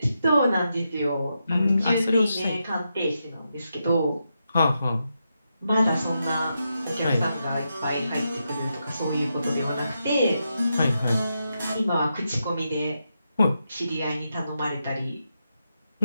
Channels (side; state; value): both; inverted; correlation -0.85